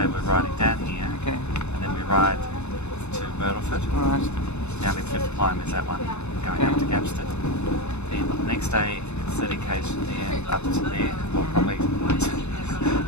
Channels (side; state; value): right; late; 0.81 ms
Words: we're riding down here, and then we ride to Myrtleford. Right. Down in Fifth Climb is that one, going up to Gapston. Then the next day, 30 k's from there, up to there. We'll probably